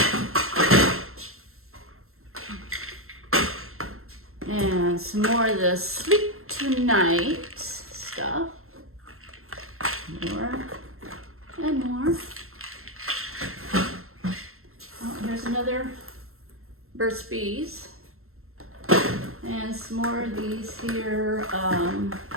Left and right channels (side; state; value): left; late; 0.62 ms